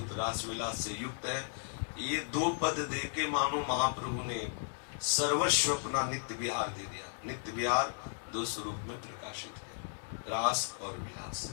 रास विलास से युक्त है, ये दो पद दे के मानो महाप्रभु ने सर्वस्व अपना नित्य विहार दे दिया। नित्य विहार दो स्वरूप में प्रकाशित है, रास और विलास।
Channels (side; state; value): right; silent; digital silence